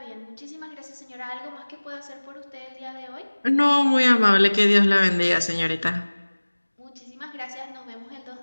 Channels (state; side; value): inverted; both; correlation -1.00